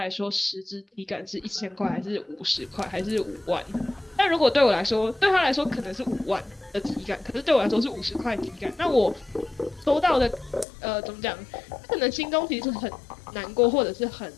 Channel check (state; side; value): drops out; right; at 10.7 s